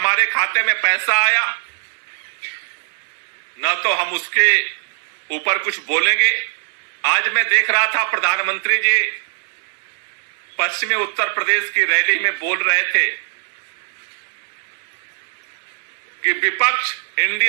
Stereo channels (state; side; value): silent; left; 61 dB below the other